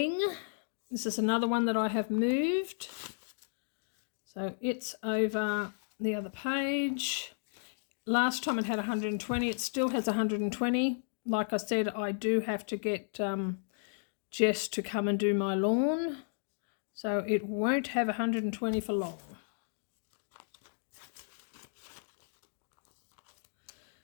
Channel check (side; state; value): right; silent; digital silence